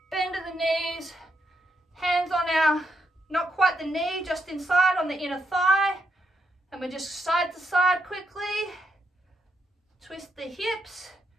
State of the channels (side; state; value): both; normal; correlation 0.80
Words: bend at the knees, hands on our, not quite the knee, just inside on the inner thigh. And we're just side to side quickly. Twist the hips,